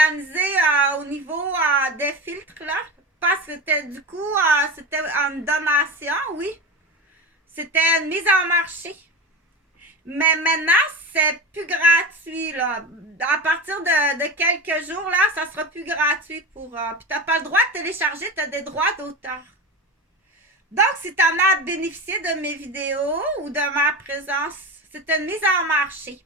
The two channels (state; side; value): normal; both; correlation 0.26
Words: au niveau des filtres, là. Parce que du coup, c'était une donation, oui. C'était une mise en marché. Mais maintenant, c'est plus gratuit, là. À partir de quelques jours, là, ça sera plus gratuit pour... puis t'as pas le droit de télécharger, t'as des droits d'auteur. Donc, si t'en as bénéficié de mes vidéos ou de ma présence, c'est une mise en marché.